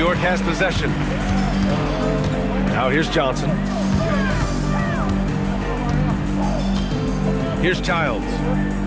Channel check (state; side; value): identical; both; correlation 1.00